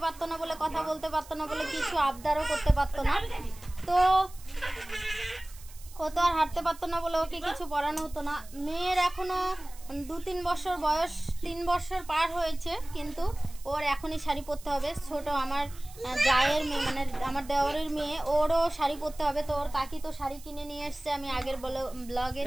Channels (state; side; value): noise; right; hiss, 20 dB below the sound